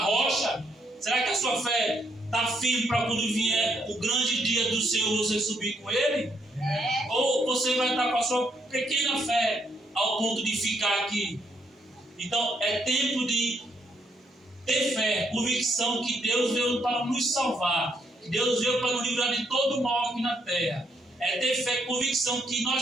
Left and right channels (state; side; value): normal; both; correlation 0.74